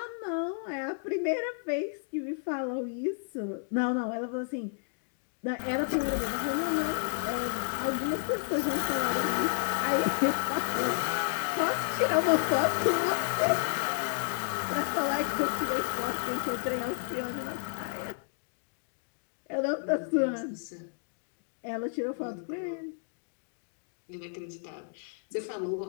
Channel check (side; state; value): right; silent; digital silence